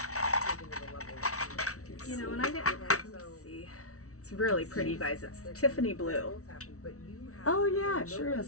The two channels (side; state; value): right; late; 0.64 ms